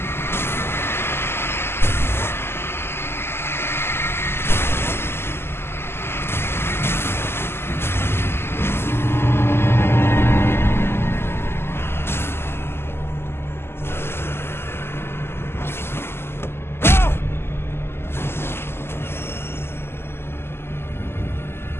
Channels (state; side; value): late; right; 0.12 ms